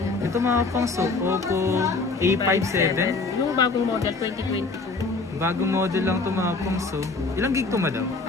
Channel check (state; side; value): quieter; right; 3.9 dB